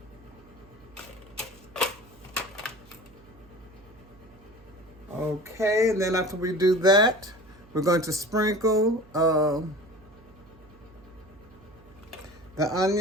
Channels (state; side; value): noise; right; hum, 25 dB below the sound